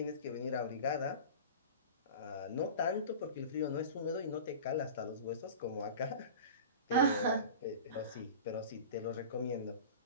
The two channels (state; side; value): inverted; both; correlation -0.34